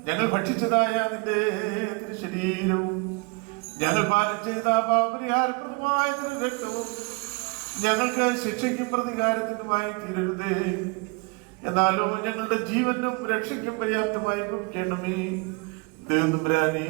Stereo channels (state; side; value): quieter; left; 29.4 dB